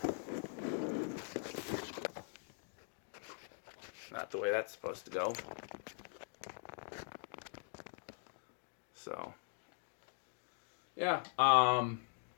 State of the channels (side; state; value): right; silent; digital silence